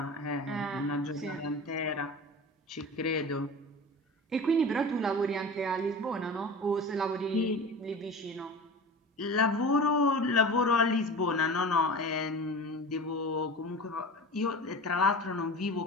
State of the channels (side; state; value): both; normal; correlation 0.34